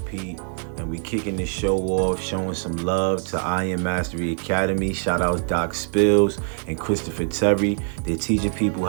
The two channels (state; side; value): silent; left; 63 dB below the other